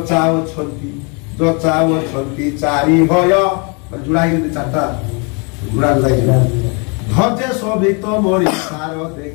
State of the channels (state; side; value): quieter; right; 33.9 dB